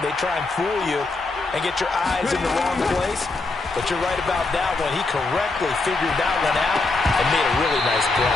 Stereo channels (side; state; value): right; quieter; 3.5 dB